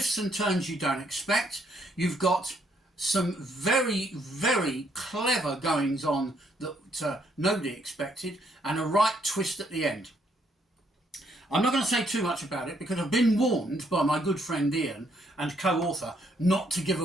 and turns you don't expect. You've got some very, very clever goings on that nobody expected, and a right twist at the end. I'm not going to say too much about it because I've been warned by my good friend Ian and co-author not to give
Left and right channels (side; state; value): both; normal; correlation 0.71